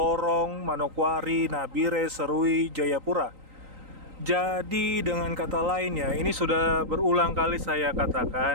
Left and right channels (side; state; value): left; late; 3.9 ms